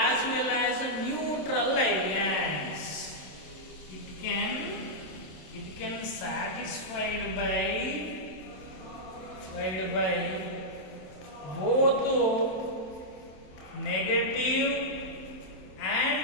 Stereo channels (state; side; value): late; right; 27 ms